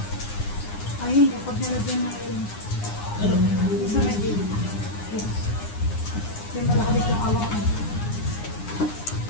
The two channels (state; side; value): late; right; 9.7 ms